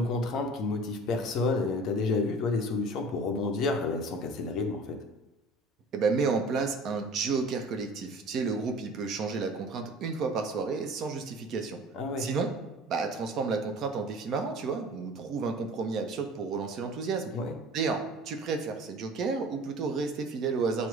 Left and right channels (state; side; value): normal; both; correlation 0.43